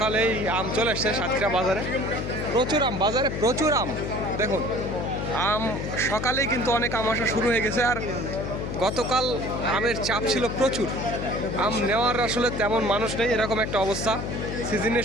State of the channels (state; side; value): noise; left; hum, 4 dB below the sound